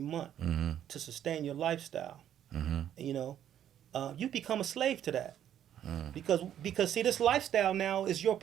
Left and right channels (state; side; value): quieter; left; 10.5 dB